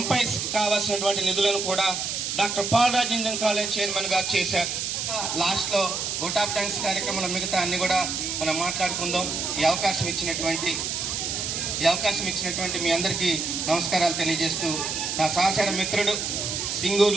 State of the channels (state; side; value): noise; right; hiss, 2 dB below the sound